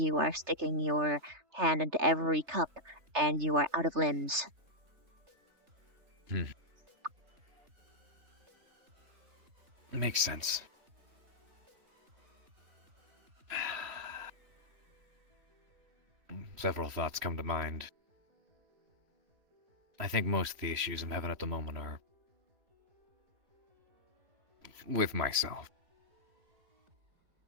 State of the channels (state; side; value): late; left; 3.3 ms